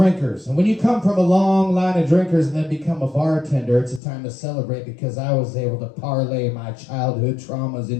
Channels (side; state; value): right; drops out; at 4.0 s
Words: And when you come from a long line of drinkers and then become a bartender, it's a time to celebrate because I was able to parlay my childhood traumas